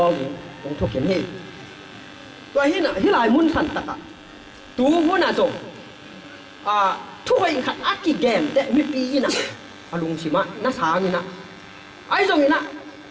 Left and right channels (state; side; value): identical; both; correlation 1.00